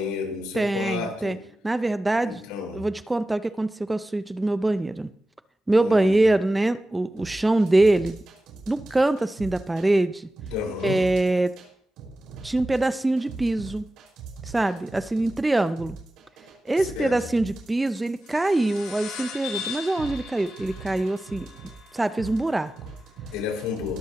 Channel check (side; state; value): both; normal; correlation 0.94